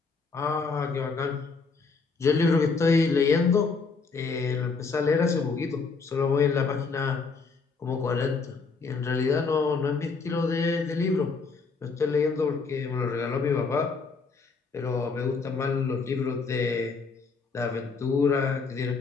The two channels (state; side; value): quieter; right; 4.6 dB